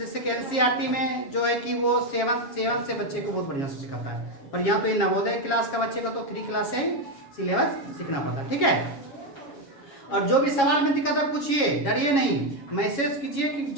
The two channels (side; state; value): right; late; 7.2 ms